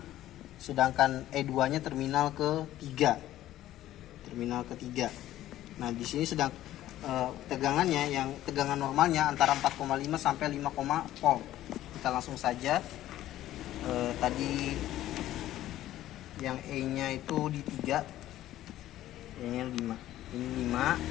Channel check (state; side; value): quieter; right; 13.8 dB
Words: sedangkan E2-nya terminal ketiga. Nah, di sini sedang tegangannya, yang tegangan normalnya antara 4,5 sampai 5, volt. Kita langsung saja, tadi yang E-nya itu di 3, E-nya 5, ini 5